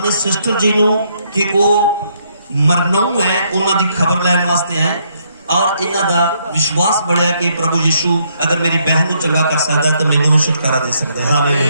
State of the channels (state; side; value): inverted; both; correlation -0.73